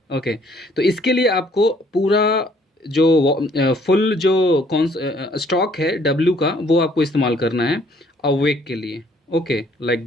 ओके, तो इसके लिए आपको पूरा जो फुल जो कौन स्टॉक है डब्लू का, वो आपको इस्तेमाल करना है अवेक के लिए। Okay, like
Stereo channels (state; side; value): normal; both; correlation 0.62